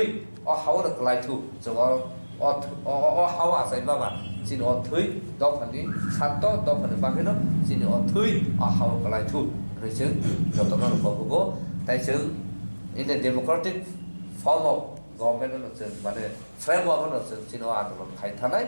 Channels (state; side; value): inverted; both; correlation -1.00